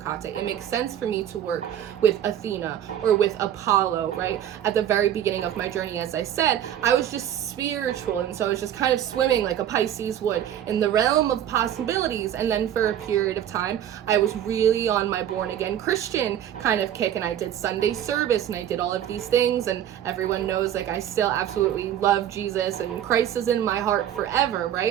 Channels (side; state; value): left; quieter; 10.5 dB